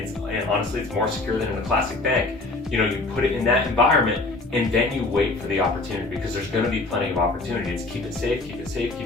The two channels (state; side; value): quieter; right; 3.2 dB